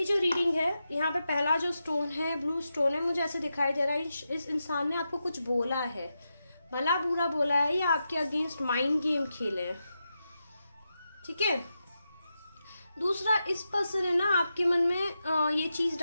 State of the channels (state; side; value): inverted; both; correlation -0.88